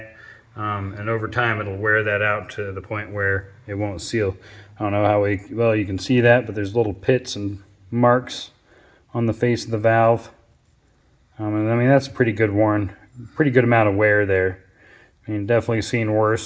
And over time it'll wear that out to the point where it won't seal. I don't know how well you can see that, but there's little pits and marks on the face of the valve. And I mean, that's pretty good amount of wear there. I mean, definitely seen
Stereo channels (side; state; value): both; identical; correlation 1.00